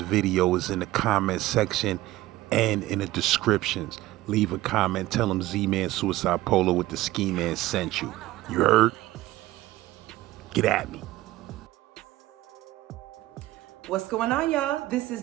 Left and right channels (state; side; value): quieter; left; 16.7 dB